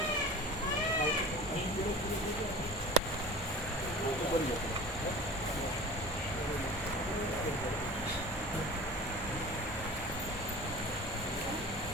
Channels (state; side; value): normal; both; correlation 0.39